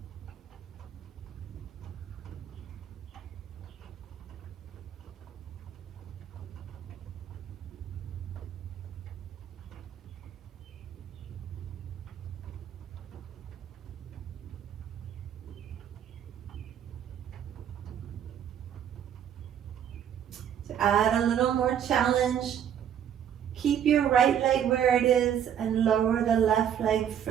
To add a little more challenge, Keep your right leg where it is and lower the left leg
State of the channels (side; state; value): left; quieter; 9.3 dB